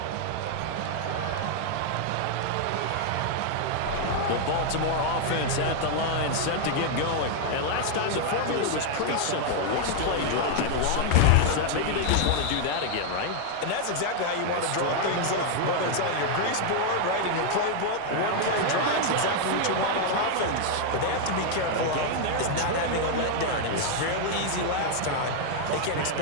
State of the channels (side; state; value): both; different; correlation 0.00